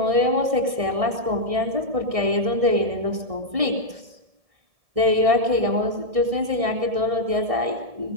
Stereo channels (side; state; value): left; late; 1.6 ms